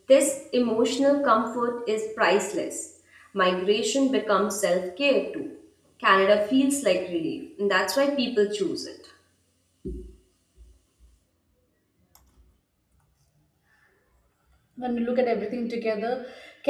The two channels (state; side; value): identical; both; correlation 1.00